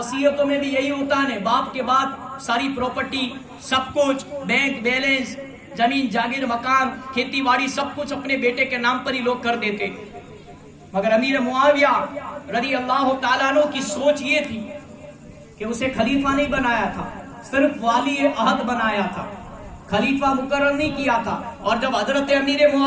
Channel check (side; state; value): both; identical; correlation 1.00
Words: میں بھی یہی ہوتا ہے، باپ کے بعد ساری پراپرٹی سب کچھ، بینک بیلنس، زمین جاگیر مکان کھیتی باڑی سب کچھ اپنے بیٹے کے نام پر ہی لوگ کر دیتے۔ مگر امیر معاویہ رضی اللہ تعالیٰ عنہ کی سوچ یہ تھی کہ اسے خلیفہ نہیں بنایا تھا، صرف والی عہد بنایا تھا، خلیفہ مقرر نہیں کیا تھا۔ اور جب حضرت امیر